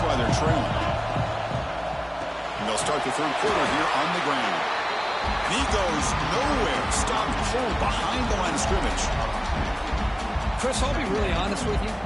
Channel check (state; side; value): identical; both; correlation 1.00